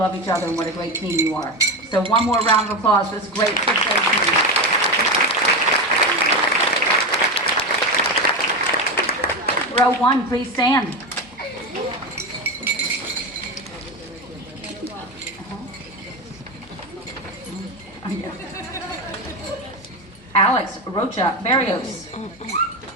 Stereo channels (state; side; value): normal; both; correlation 0.17